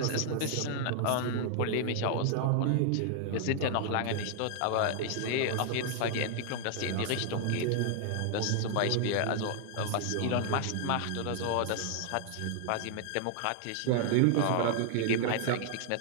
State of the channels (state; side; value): different; both; correlation 0.00